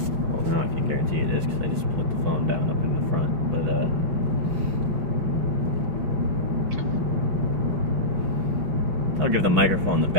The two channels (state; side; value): late; left; 5.9 ms